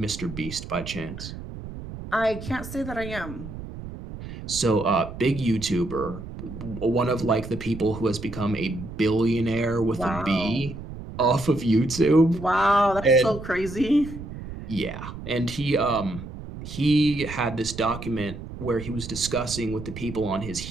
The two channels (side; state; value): right; noise; rumble, 11 dB below the sound